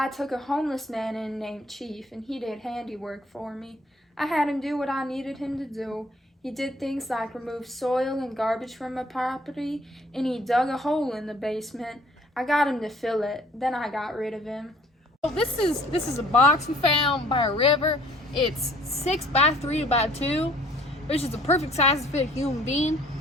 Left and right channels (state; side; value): normal; both; correlation 0.57